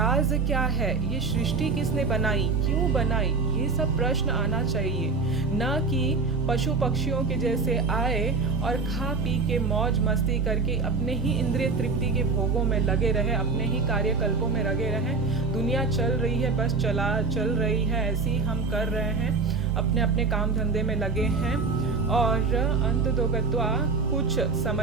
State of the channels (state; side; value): quieter; left; 4.3 dB